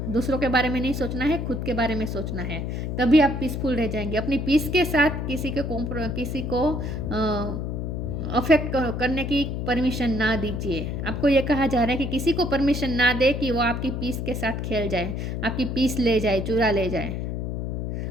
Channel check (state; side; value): noise; left; hum, 3 dB below the sound